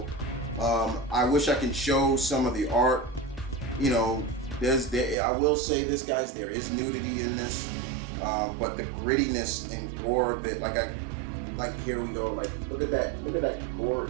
I wish I could show some of the art. I will say this, guys, there is nudity in this, but the grittiness and gore of it, here we go, look at that gore,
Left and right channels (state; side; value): drops out; left; at 5.2 s